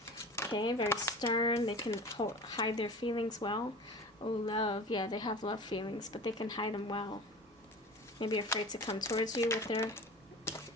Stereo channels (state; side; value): normal; both; correlation 0.37